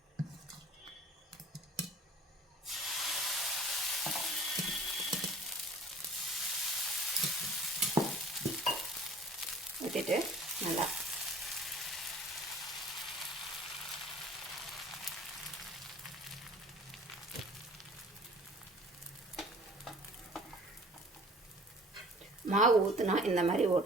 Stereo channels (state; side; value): normal; both; correlation 0.49